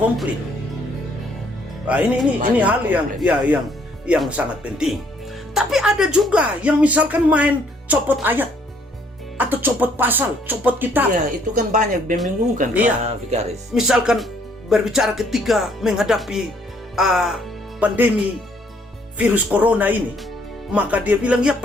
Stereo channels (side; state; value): both; normal; correlation 0.65